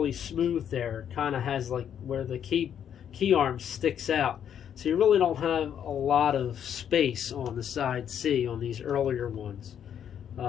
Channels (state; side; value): quieter; right; 9.1 dB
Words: smooth there. It kind of has like where the key arm sticks out. So you really don't have a lot of space on the side C on these earlier ones.